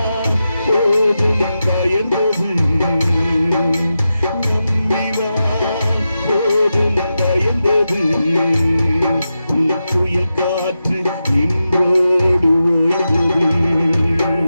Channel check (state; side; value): inverted; both; correlation -0.90